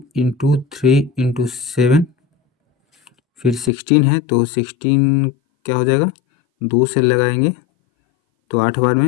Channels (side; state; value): right; drops out; at 3.7 s